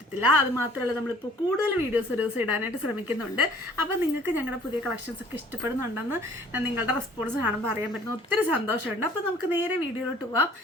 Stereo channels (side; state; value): both; normal; correlation 0.54